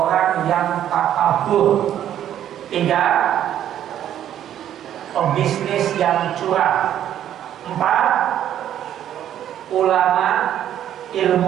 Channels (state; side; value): quieter; left; 10.9 dB